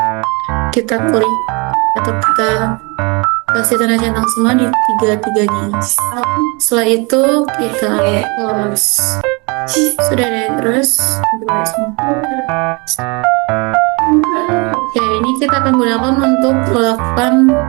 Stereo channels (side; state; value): left; quieter; 29.6 dB